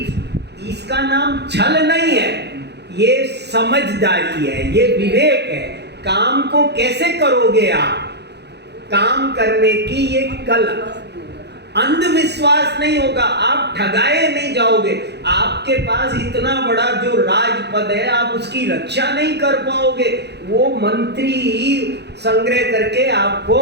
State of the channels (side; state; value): left; late; 0.49 ms